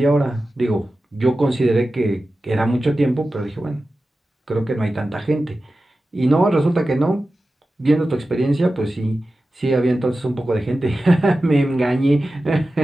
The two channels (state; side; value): normal; both; correlation 0.94